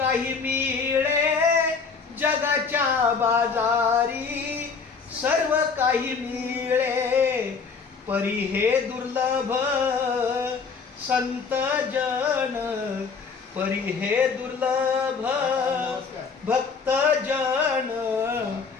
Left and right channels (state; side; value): quieter; right; 5.2 dB